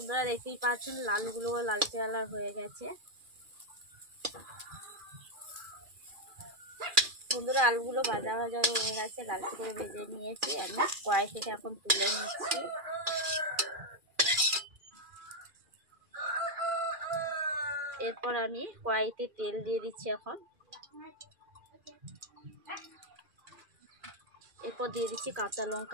দেখতেই পাচ্ছেন আলুগুলো লালচে কালার হয়ে গেছে। বন্ধুরা আলুগুলো ভাজা ভাজা হয়ে গেছে, লালচে করে ভেজে নিয়েছি। আমি কড়াই থেকে এখন তুলে নিচ্ছি। এরপর আমি কড়াইতে তেল দিয়ে দিচ্ছি এখন। এরপর দিয়ে দিচ্ছি কাঁচা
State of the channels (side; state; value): left; late; 2.4 ms